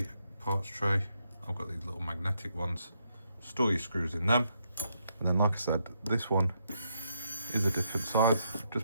parts tray. I've got these little magnetic ones. Store your screws in them. And then, like I said, this one is a different size,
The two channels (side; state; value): both; inverted; correlation -0.78